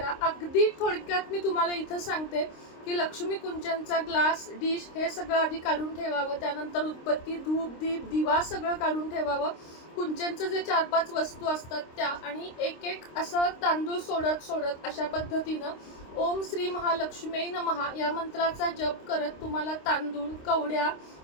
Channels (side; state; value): right; late; 26 ms